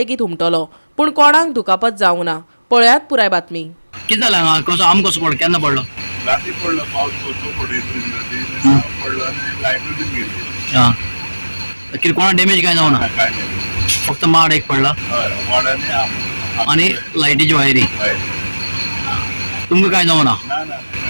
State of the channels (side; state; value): both; inverted; correlation -1.00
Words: उमटलो, पूण कोणाक दुखापत जावंक ना। पळयात पुराय बातमी। किती झालं हांगा कसो आंब कसो पडलो केन्ना पडलो? रात्री पडलो पावस कसो पडलो आणि लायट बी गेली। हां कितें कोणा डॅमेज काय जावं ना? काय नाही फक्त माड एक पडला वाड्याने आणि लायटीची वायरी। तुमकां काय जावं ना?